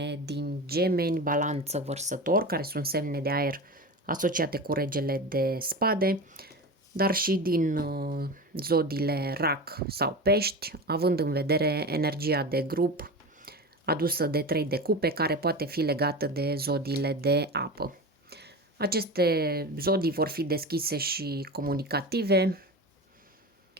din Gemeni, Balanță, Vărsător, care sunt semne de aer asociate cu regele de spade, dar și din zodiile Rac sau Pești, având în vedere energia de grup adusă de 3 de cupe, care poate fi legată de zodiile de apă. Aceste zodii vor fi deschise și comunicative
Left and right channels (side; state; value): both; normal; correlation 0.27